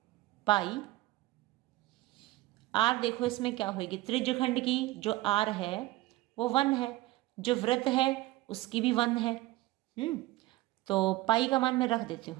पाई r, देखो इसमें क्या होगी, त्रिज्यखंड की जो r है वो 1 है, जो वृत्त है उसकी भी 1 है। तो पाई का मान मैं रख देती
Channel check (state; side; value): quieter; left; 18.1 dB